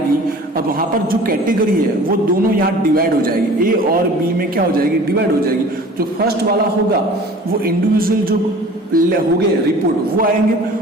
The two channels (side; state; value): both; normal; correlation 0.45